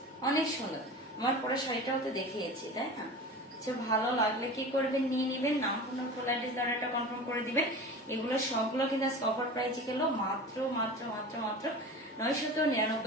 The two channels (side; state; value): both; normal; correlation 0.33